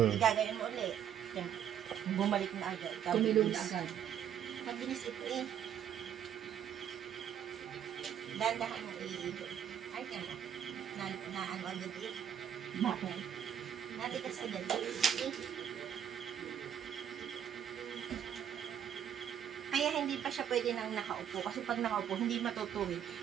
igagayin mo ulit. Yan. Bumalik na agad. Tumilong na agad. Mabilis ito eh. Dandahan mo iikot. Ay, ano. Na ano agad eh. Bakit? Natigas agad eh. Kaya hindi pa siya pwede nang nakaupo. Kasi pag nakaupo, hindi matutuwid.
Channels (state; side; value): quieter; left; 9.3 dB